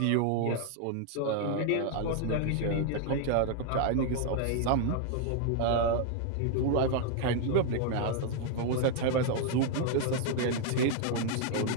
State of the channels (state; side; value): different; both; correlation 0.00